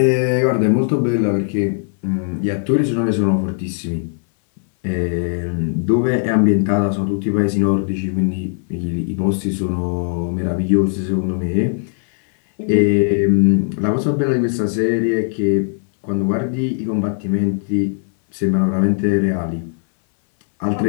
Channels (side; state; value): right; silent; 60 dB below the other